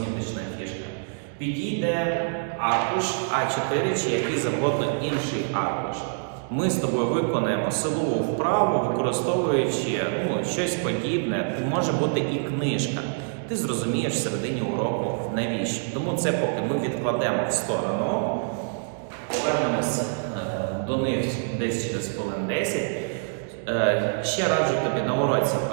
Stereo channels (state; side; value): silent; left; digital silence